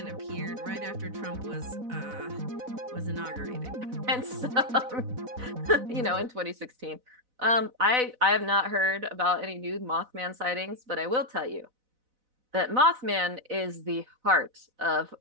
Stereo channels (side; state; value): left; late; 4.0 ms